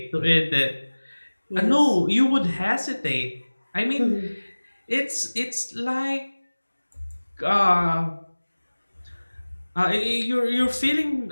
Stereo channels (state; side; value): inverted; both; correlation -1.00